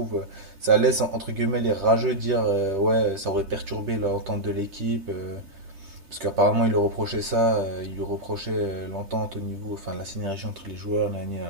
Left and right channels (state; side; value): late; left; 3.3 ms